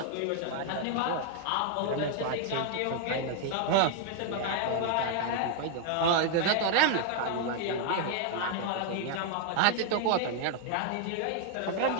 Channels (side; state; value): both; different; correlation 0.00